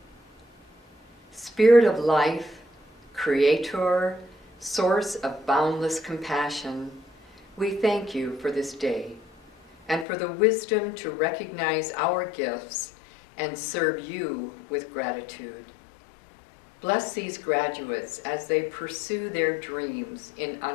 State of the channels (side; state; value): right; drops out; at 10.1 s